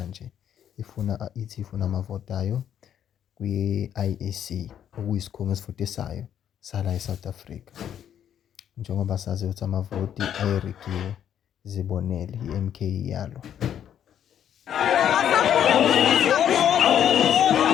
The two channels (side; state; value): right; quieter; 9.6 dB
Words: Ithi ifuna amavoti ayo kwi-IEC, okuyisikhungo esivutisayo sala eSouth Africa. Njengoba sazi ukuthi amavoti ayerigiwe, zibonele i-MK yalo.